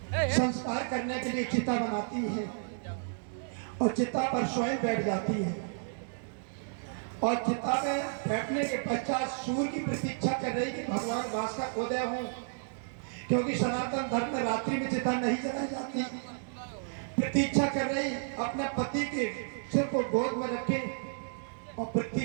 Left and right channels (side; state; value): left; silent; digital silence